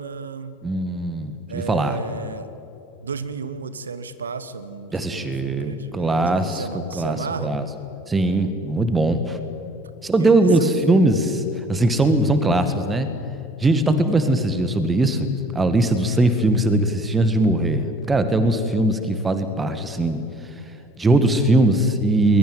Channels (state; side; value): normal; both; correlation 0.58